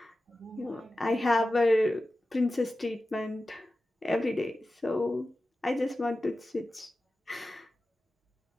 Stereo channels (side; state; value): both; normal; correlation 0.94